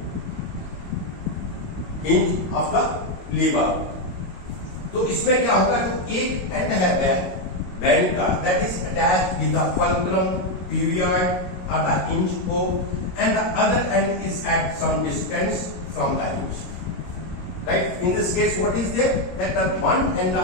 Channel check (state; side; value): late; right; 22 ms